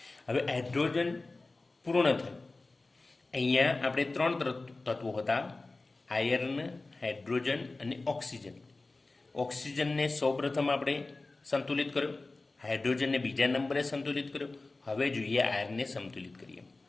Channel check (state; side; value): quieter; right; 3.3 dB